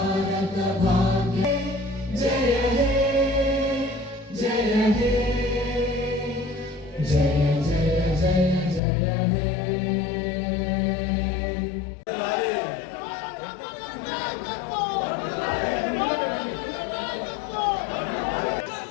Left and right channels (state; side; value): drops out; right; at 8.8 s